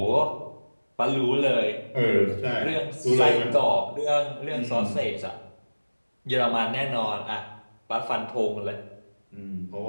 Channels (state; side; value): inverted; both; correlation -1.00